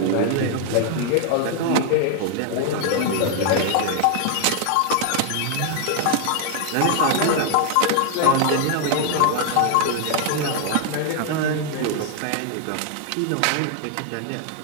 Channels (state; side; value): different; both; correlation 0.00